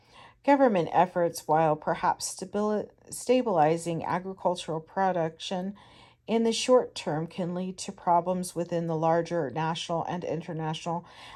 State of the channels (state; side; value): identical; both; correlation 1.00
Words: Government efforts, while perhaps stabilizing agricultural production in the short term, can lead to problems within the larger national and international